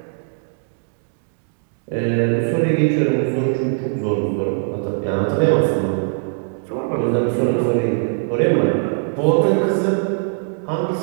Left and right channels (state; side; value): silent; left; 65 dB below the other